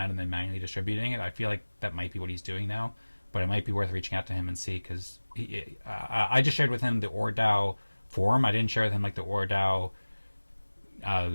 and then manually distributing it. I feel like that might be what he's doing now, but it might be worth reaching out to him and see because I just shared with him the ORDAO forum. I didn't share with him like the ORDAO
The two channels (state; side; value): inverted; both; correlation -1.00